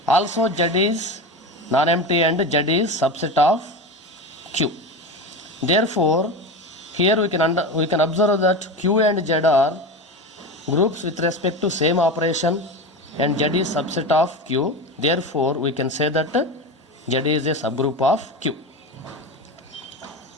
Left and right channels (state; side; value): normal; both; correlation 0.24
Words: Also Z is non-empty and Z is subset of Q. Therefore, here we can observe that Q and Z are groups with respect to same operation, and Z is subset of Q. Therefore, we can say that Z is a subgroup of Q.